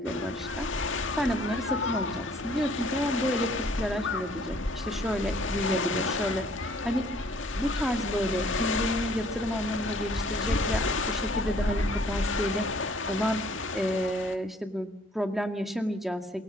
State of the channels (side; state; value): both; normal; correlation 0.59